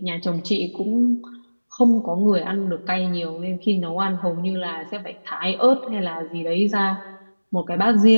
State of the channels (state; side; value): inverted; both; correlation -1.00